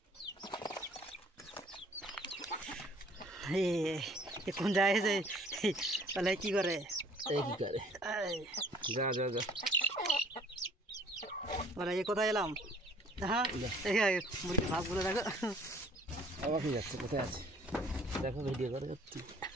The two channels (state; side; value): normal; both; correlation 0.55